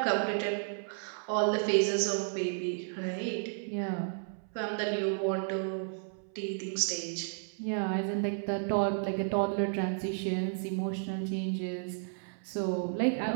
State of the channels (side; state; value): left; silent; 56 dB below the other